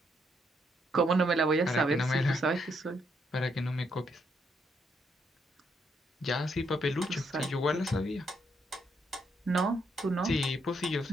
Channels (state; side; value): normal; both; correlation 0.75